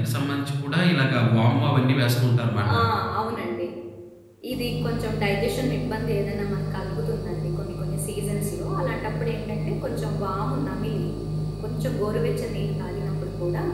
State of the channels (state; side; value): identical; both; correlation 1.00